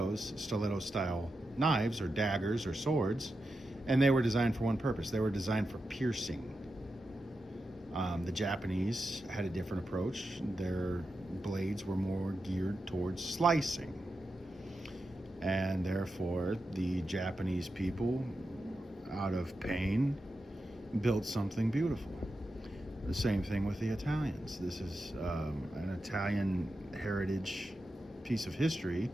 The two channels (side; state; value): both; normal; correlation 0.89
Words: knives or daggers or swords, and they were designed for one purpose. They were designed for piercing. The Japanese had a different approach. Their blades were more geared towards slicing. And therefore, the Japanese people, out of pain, built something beautiful. The same thing with the Italians. This is an Italian heritage piece of history,